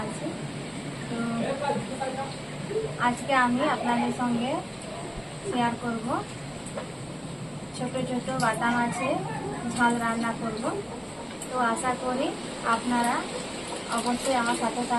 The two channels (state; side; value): identical; both; correlation 1.00